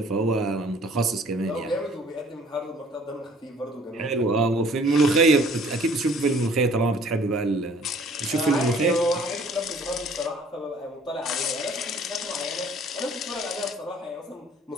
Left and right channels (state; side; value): normal; both; correlation 0.55